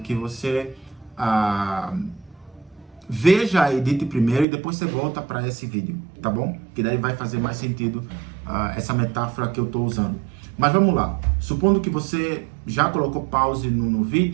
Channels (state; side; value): drops out; left; at 4.5 s